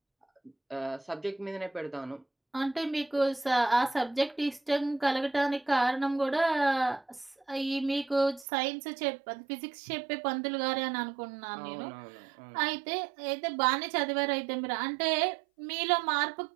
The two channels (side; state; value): left; drops out; at 8.5 s